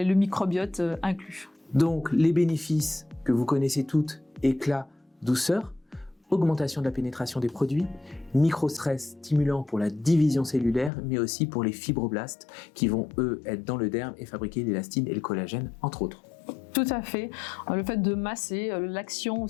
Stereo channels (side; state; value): right; drops out; at 10.9 s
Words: microbiote inclus. Donc, les bénéfices que vous connaissez toutes, éclat, douceur, augmentation de la pénétration des produits, microstress stimulant pour la division cellulaire, mais aussi pour les fibroblastes qui vont, eux, être dans le derme et fabriquer l'élastine et le collagène, entre autres. Tout à fait. Le fait de masser, l'action